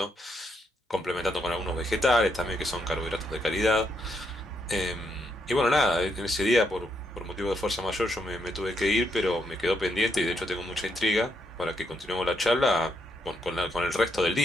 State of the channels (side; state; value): both; normal; correlation 0.78